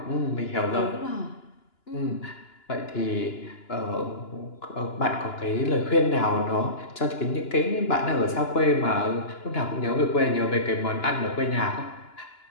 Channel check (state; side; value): late; right; 2.9 ms